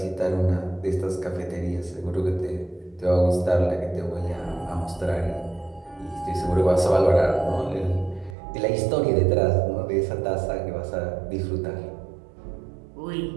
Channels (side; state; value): left; drops out; at 8.3 s